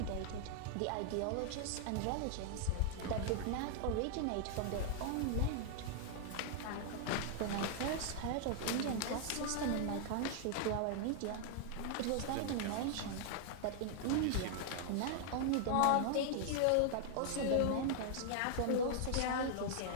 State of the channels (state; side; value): different; both; correlation 0.00